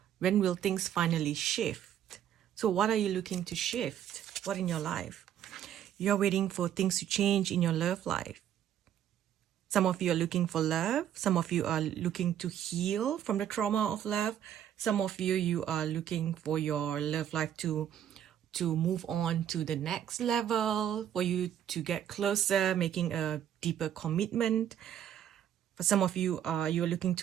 When will things finally shift? So what are you looking to shift? What in your life? You're waiting for things to change in your love life. Some of you are looking for love. Some of you are looking to heal from the trauma of love. Some of you are looking for your love life to move on to the next level, for you to get closer, making a deeper commitment. For some of you, you're looking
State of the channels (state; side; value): quieter; left; 10.4 dB